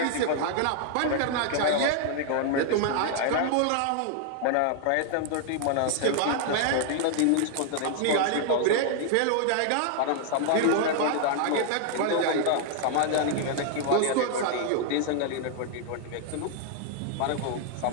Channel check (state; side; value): different; both; correlation 0.00